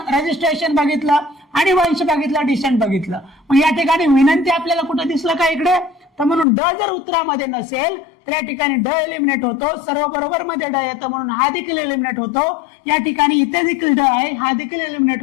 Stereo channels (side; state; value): right; drops out; at 6.5 s